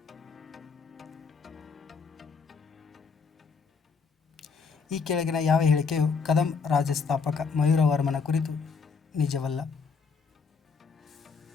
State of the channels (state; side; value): quieter; right; 5.4 dB